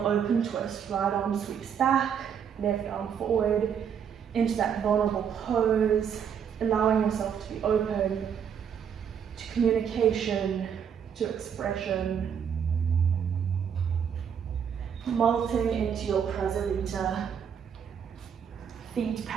open twist, right arm sweeps back, left arm forward, into that vulnerable pose, allowing yourself to be open to communication, to expression. Molting into your prasarita, feet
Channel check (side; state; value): left; quieter; 7.8 dB